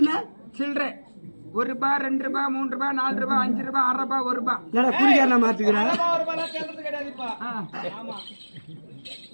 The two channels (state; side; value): inverted; both; correlation -1.00